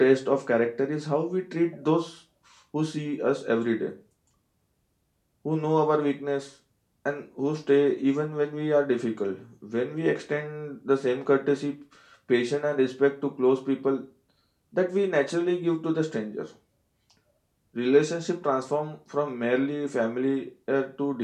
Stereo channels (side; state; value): both; identical; correlation 1.00